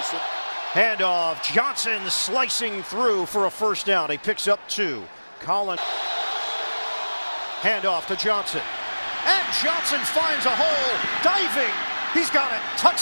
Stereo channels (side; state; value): both; inverted; correlation -1.00